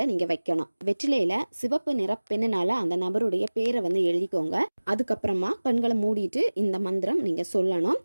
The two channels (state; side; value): inverted; both; correlation -1.00